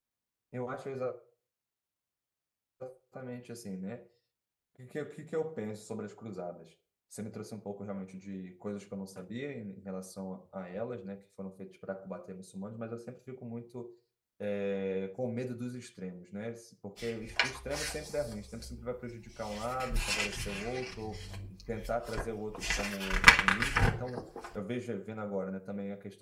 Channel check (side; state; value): both; identical; correlation 1.00